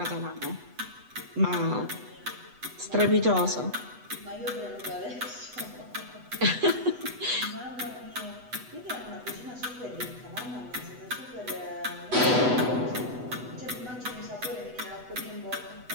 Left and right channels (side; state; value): left; late; 8.0 ms